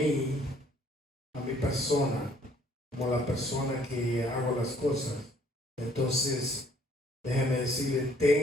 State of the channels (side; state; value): both; normal; correlation 0.61